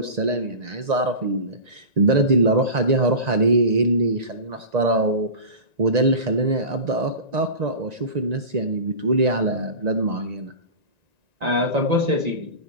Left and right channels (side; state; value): left; late; 1.9 ms